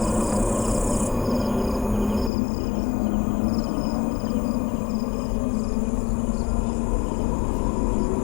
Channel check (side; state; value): right; drops out; at 2.3 s